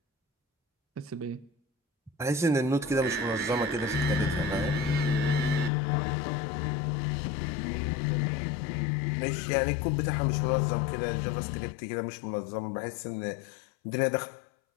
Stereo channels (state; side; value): drops out; right; at 5.7 s